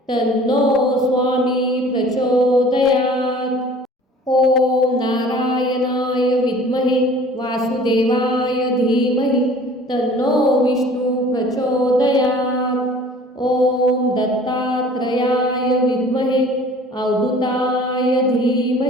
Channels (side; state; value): both; normal; correlation 0.48